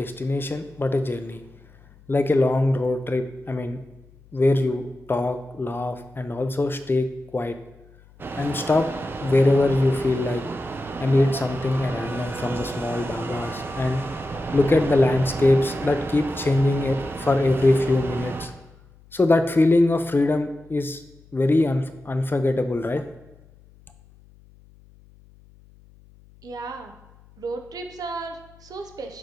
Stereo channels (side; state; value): left; noise; hum, 27 dB below the sound